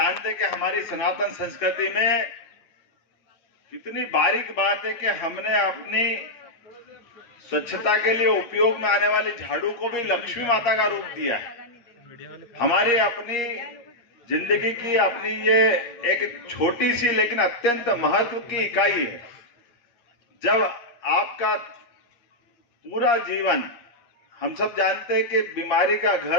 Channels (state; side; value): late; right; 8.5 ms